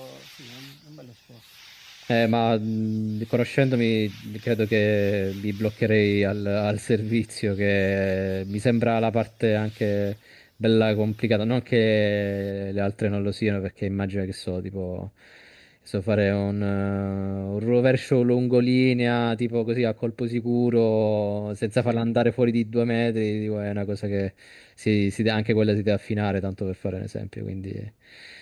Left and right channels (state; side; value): identical; both; correlation 1.00